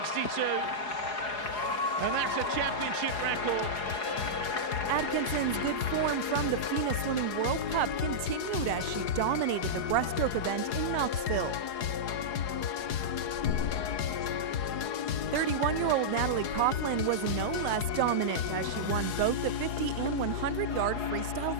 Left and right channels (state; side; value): late; right; 4.8 ms